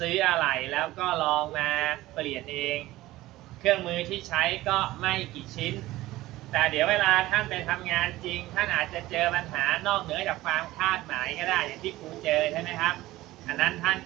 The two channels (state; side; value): quieter; left; 17.2 dB